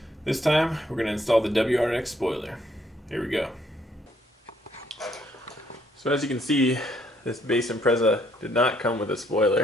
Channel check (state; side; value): normal; both; correlation 0.69